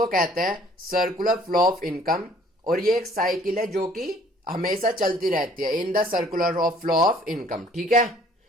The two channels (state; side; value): normal; both; correlation 0.57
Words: कहते हैं सर्कुलर फ्लो ऑफ इनकम। और ये एक साइकिल है जो कि हमेशा चलती रहती है in the circular of flow of income. ठीक है,